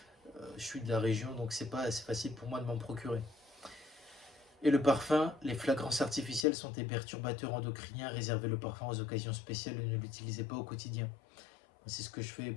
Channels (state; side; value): drops out; right; at 6.5 s